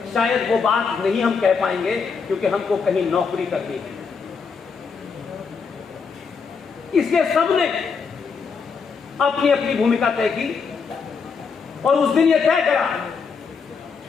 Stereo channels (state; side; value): quieter; right; 5.5 dB